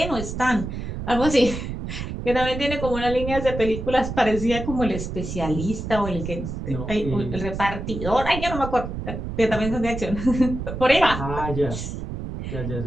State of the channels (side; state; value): right; noise; rumble, 6 dB below the sound